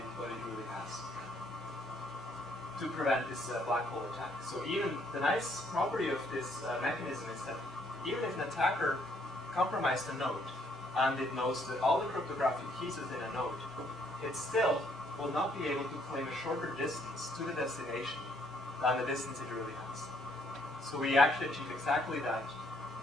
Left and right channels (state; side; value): normal; both; correlation 0.68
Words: really has, to prevent this black hole attack. So even the nice property of this mechanism is that even if an attacker compromised a node and it knows that all the cryptographic keys within a node, it still will not be able to claim a shorter distance to the destination than the distance it really has. So we actually achieve exactly that